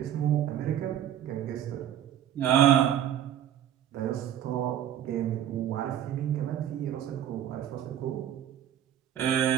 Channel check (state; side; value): quieter; left; 10.6 dB